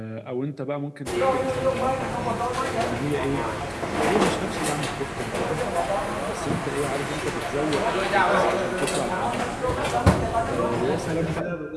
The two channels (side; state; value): both; identical; correlation 1.00